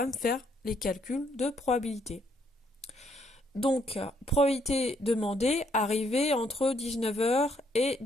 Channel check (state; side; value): normal; both; correlation 0.70